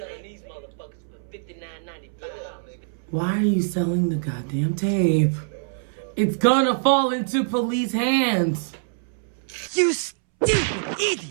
these motherfuckers for $59.95. Why are you selling the goddamn tape? It's gonna fall into police hands. You stupid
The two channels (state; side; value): silent; left; 62 dB below the other